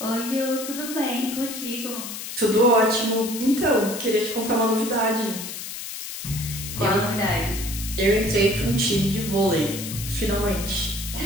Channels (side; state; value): left; noise; hiss, 8 dB below the sound